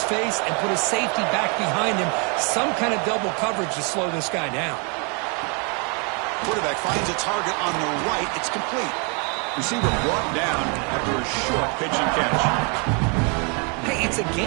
face and put a safety back behind him. Some kind of double coverage to slow this guy down. Quarterback finds a target on the right. It's complete. Receiver brought down after a short pitch and catch. Hey, it's a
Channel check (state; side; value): quieter; left; 35.3 dB